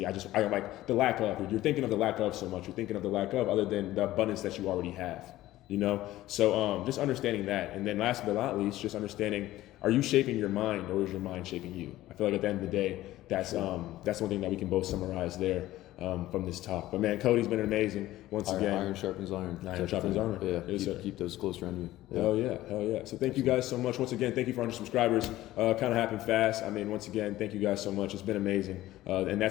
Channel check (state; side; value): quieter; right; 15.6 dB